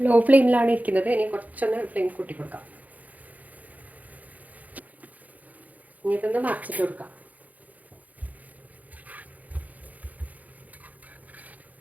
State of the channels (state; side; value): late; left; 0.078 ms